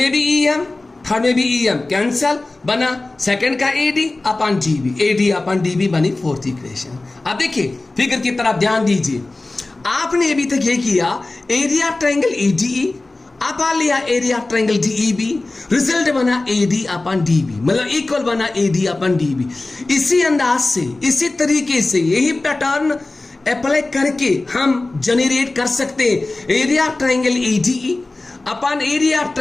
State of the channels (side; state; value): right; quieter; 3.1 dB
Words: में भी EM, थर्ड में भी EM कैंसिल, बना सेकंड का AD upon DB, AD upon DB बनी फोर्थ इक्वेशन। अब देखिए फिगर की तरफ ध्यान दीजिए, आपने अभी तक ये किया एरिया ट्रायंगल एडीई अपन लिया एरिया ट्रायंगल डीईबी, रिजल्ट बना एडी अपन डीबी, मतलब इक्वल बना एडी अपन डीबी। इसी अंदाज से, इसी तरीके से, यही पैटर्न अप्लाई करके हम जनरेट कर सकते हैं area triangle ADE upon area